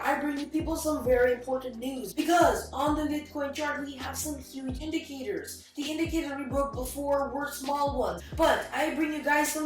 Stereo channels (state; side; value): identical; both; correlation 1.00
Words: I bring you people some very important news, because on the Bitcoin chart, we have some huge indicators. The indicators we broke before were small ones, but I bring you guys